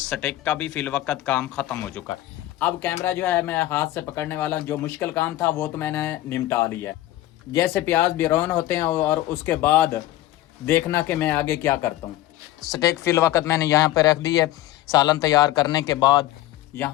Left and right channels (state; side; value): quieter; right; 15.1 dB